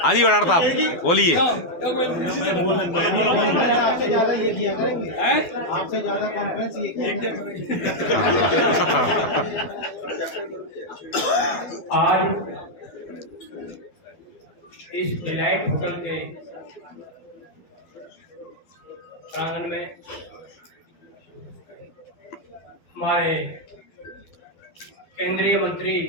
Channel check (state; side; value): late; right; 12 ms